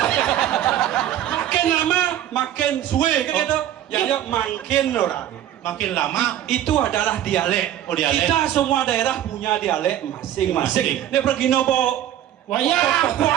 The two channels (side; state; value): left; quieter; 11.6 dB